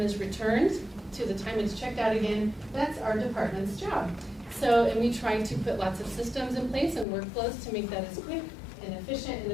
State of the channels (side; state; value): right; drops out; at 7.1 s